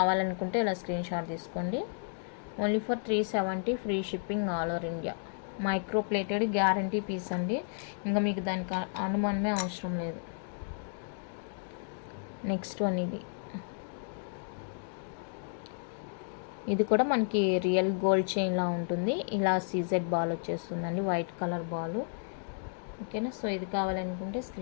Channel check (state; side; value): silent; right; digital silence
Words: ఇలా స్క్రీన్ షాట్ తీసుకోండి. Only for 370 free shipping all over India. Micro plated guarantee piece అండి, ఇంకా మీకు దానికి అనుమానమే అవసరం లేదు. నెక్స్ట్ వన్ ఇది కూడా మనకి రియల్ గోల్డ్ చైన్లా ఉంటుంది. ఇలా సీజెడ్ బాల్ వచ్చేస్తుందండి, వైట్ కలర్ బాల్. ఓకేనా, సో ఇది కావాలనుకుంటే